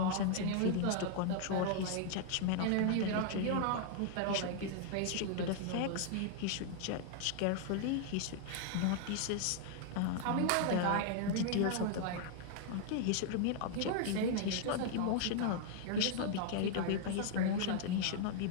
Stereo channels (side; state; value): both; different; correlation 0.00